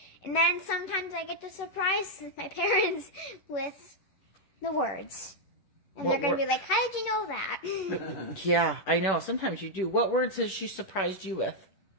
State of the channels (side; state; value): right; late; 11 ms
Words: And then sometimes I get to surprise my parents with the words. And they're going to be like, how did you know that? Yeah, I know. Sometimes you do. What words has she surprised you with?